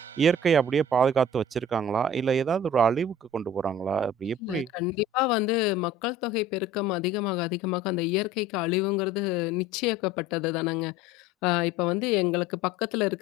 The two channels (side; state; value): both; normal; correlation 0.44